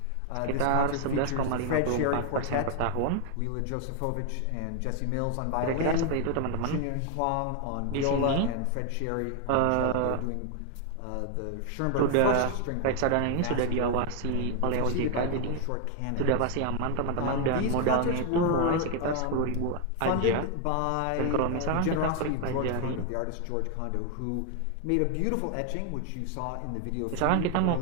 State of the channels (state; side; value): different; both; correlation 0.00